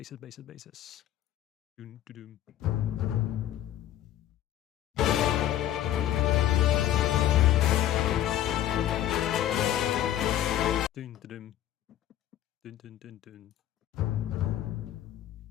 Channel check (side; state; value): right; quieter; 12.2 dB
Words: basses, basses. Dun, dun, dun. Dun, dun, dun. Dun, dun, dun, dun.